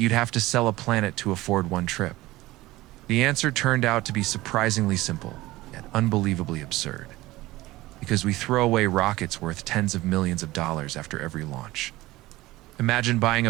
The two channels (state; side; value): quieter; left; 18.3 dB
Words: have to sell a planet to afford one trip? The answer turned out to be surprisingly simple, yet unbelievably absurd. Because we throw away rockets worth tens of millions of dollars after every launch. Imagine buying